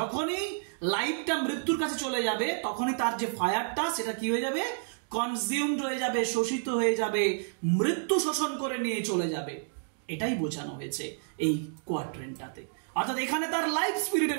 লাইফটা মৃত্যুর কাছে চলে যাবে তখনই তার যে ফায়ারটা সেটা কি হয়ে যাবে? কনজিউমড হয়ে যাবে, শোষিত হয়ে যাবে, মৃত্যু শোষণ করে নিয়ে চলে যাবে। এটাই বোঝানো হয়েছে এই কোয়াড্রেন্টটাতে। অর্থাৎ এখানে তার লাইফ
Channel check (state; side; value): silent; left; digital silence